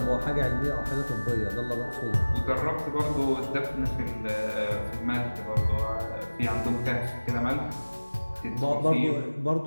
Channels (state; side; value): inverted; both; correlation -1.00